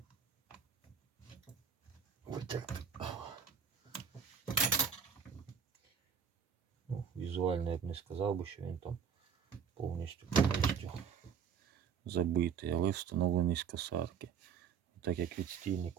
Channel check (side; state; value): left; quieter; 7.0 dB